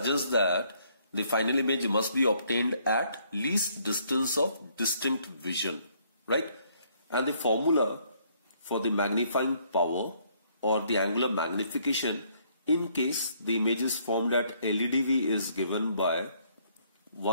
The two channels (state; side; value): inverted; both; correlation -0.67